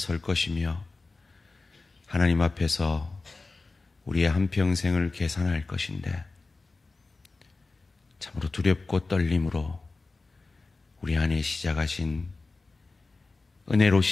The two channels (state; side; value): quieter; right; 3.7 dB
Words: 것이며 하나님 앞에서 우리의 한평생을 계산할 것인데 참으로 두렵고 떨림으로 우리 안에 시작하신, 은혜로